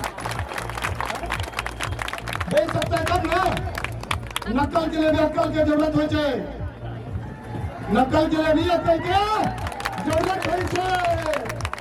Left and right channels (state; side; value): identical; both; correlation 1.00